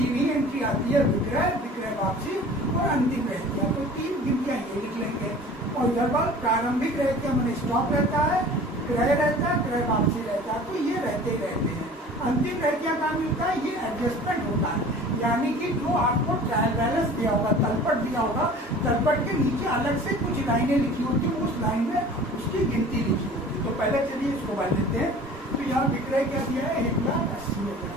ही एंट्री आती है, विक्रय, विक्रय वापसी और अंतिम रहतिया। तो 3 गिनतियाँ ये लिख लेंगे और इधर बार प्रारंभिक रहतिया मैंने स्टॉक रहता है, क्रय रहता है, क्रय वापसी रहता है, तो ये रहते ही रहते हैं। अंतिम रहतिया का मिलता है, ये एडजस्टमेंट होता है, यानी कि जो आपको ट्रायल बैलेंस दिया होगा, तलपट दिया होगा, तलपट के नीचे अलग से कुछ लाइनें लिखी होती है, उस लाइन में उसकी गिनती लिखी होती है। तो पहले चलिए इसको बन लेते हैं। तो यहाँ विक्रय क्या दिया है,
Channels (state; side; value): normal; both; correlation 0.44